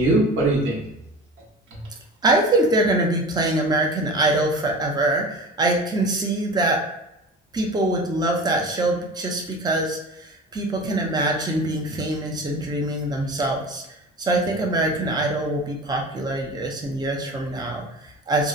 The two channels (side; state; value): both; normal; correlation 0.35